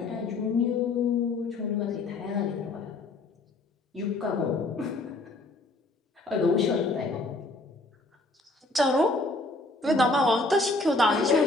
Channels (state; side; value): quieter; right; 3.0 dB